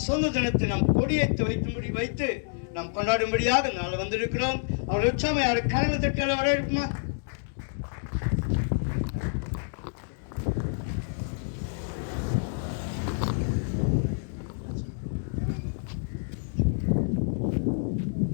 சொந்த தினத்தை நாம் கொடியேற்றி வைத்து நாம் கொண்டாடும்படியாக இந்த நாள் வந்திருக்கிறோம். அவருடைய உற்சாகம் யாரு கரங்களை தட்டால வரவேற்புமா?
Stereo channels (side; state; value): right; silent; digital silence